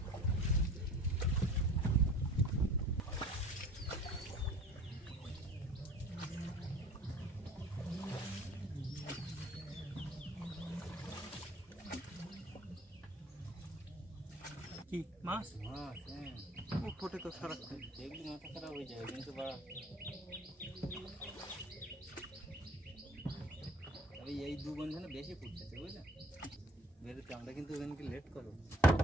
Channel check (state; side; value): normal; both; correlation 0.46